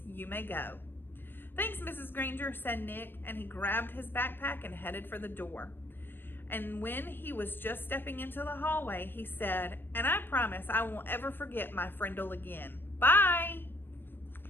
You may go." "Thanks, Mrs. Granger," said Nick, and he grabbed his backpack and headed for the door. And when he was just stepping into the hallway, he said, "And I promise I won't ever forget my Frindle again. Bye."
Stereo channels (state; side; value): late; right; 0.098 ms